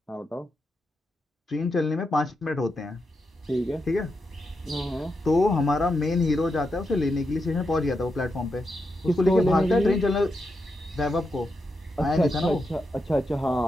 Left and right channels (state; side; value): normal; both; correlation 0.85